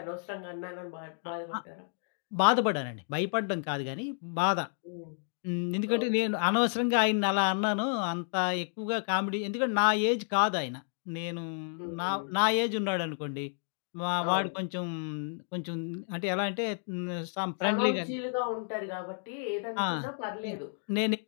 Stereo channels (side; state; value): right; silent; digital silence